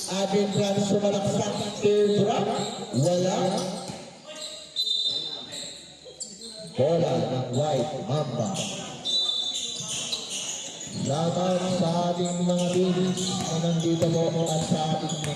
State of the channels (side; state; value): both; identical; correlation 1.00